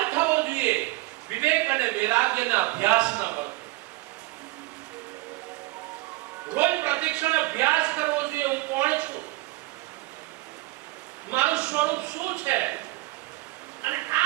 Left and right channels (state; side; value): quieter; left; 20.9 dB